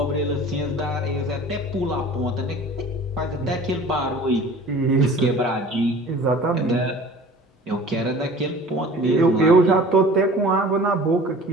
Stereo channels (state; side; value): normal; both; correlation 0.44